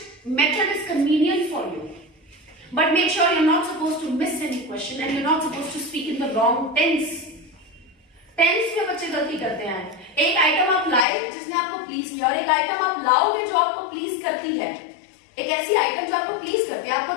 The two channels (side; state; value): right; drops out; at 11.1 s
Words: method is convenient for you. But make sure you're not supposed to miss any question and you're not supposed to speak in the wrong tense. Tense में बच्चे गलती करते हैं. एक item आप लाए जिसने आपको प्लीज किया, और एक आइटम आप लाओगे जो आपको प्लीज करती है. एक ऐसी आइटम जो आपको प्लीज करती है, आपको